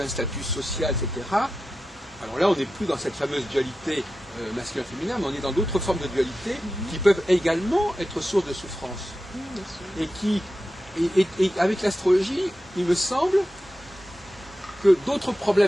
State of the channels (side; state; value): both; normal; correlation 0.92